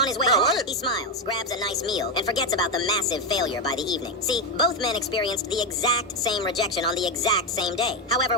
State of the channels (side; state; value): both; normal; correlation 0.09